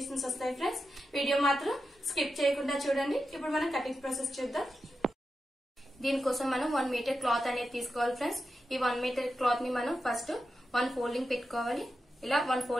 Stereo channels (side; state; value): both; normal; correlation 0.89